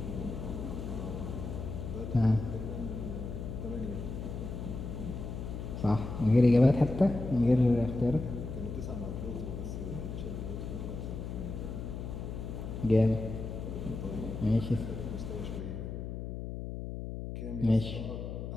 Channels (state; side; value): noise; left; hum, 6 dB below the sound